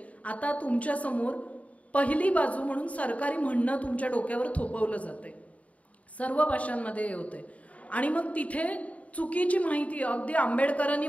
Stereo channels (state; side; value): late; right; 0.067 ms